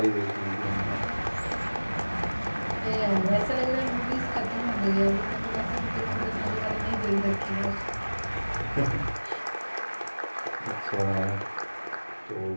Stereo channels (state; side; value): inverted; both; correlation -1.00